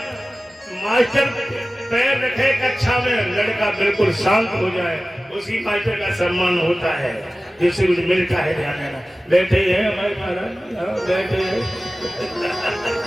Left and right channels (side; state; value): both; normal; correlation 0.96